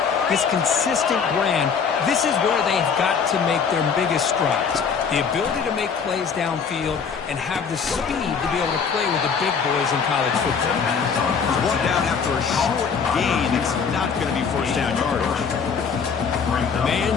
this consistent brand, this is where they've got to make their biggest strides. The ability to make plays downfield and have the speed to be able to play with the big boys in college football. It's brought down after a short gain. It's not going to be first down yardage.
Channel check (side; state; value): right; quieter; 6.1 dB